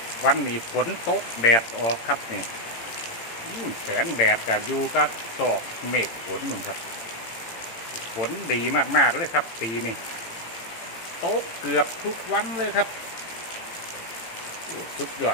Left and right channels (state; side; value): late; right; 18 ms